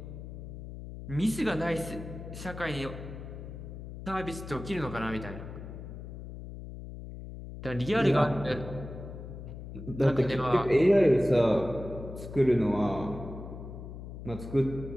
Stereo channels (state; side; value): noise; left; hum, 11 dB below the sound